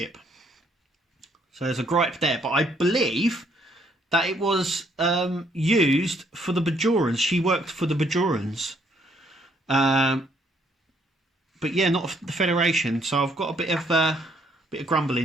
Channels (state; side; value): normal; both; correlation 0.68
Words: So there's a gripe there. But I believe that it was used for the Bajorans. She worked for the Bajorans. But yeah, not the Federation. So I've got a bit of grumble